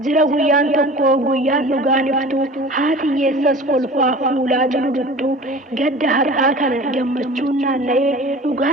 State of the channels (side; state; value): both; normal; correlation 0.40